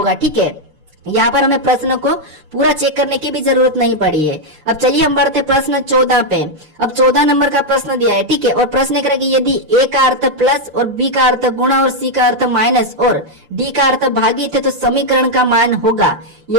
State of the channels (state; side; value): late; left; 6.6 ms